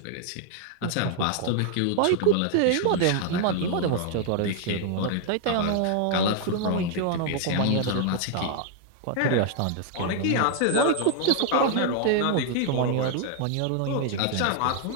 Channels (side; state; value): both; different; correlation 0.00